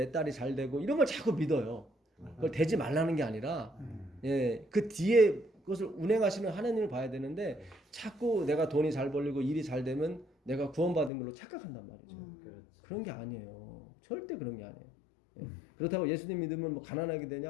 딸이 잘 되고 이런 걸 자꾸 믿어요. 그걸 되지 말라는 게 아니라 예, 그 뒤에 그것을 운행하시는 하나님을 봐야 되는데 자꾸 내가 돈이 잘 벌리고 일이 잘 되면 내가 구원받은 걸로 착각한단 말이죠. 그런 게 아니에요. 절대 그런 게 아니에요. 예. 그렇다고 예수님 믿으면 뭐 가난하게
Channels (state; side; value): drops out; right; at 11.1 s